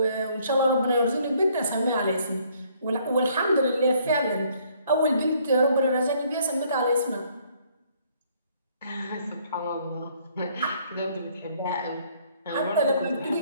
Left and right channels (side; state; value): both; inverted; correlation -0.64